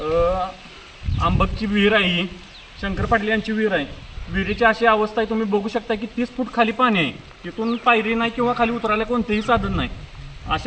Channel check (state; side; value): identical; both; correlation 1.00